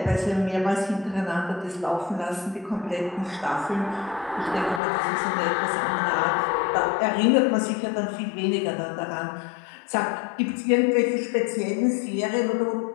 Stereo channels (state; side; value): drops out; right; at 4.8 s